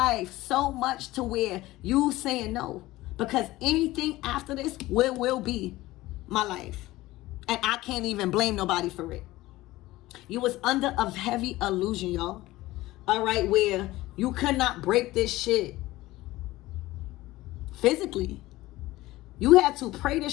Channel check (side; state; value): right; quieter; 17.9 dB